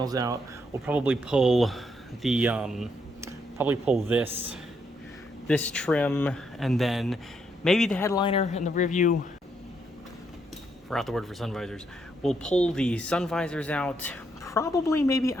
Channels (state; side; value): normal; both; correlation 0.76